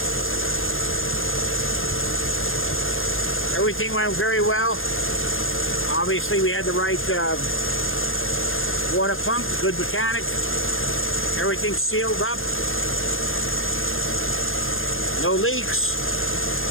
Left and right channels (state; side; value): late; right; 0.60 ms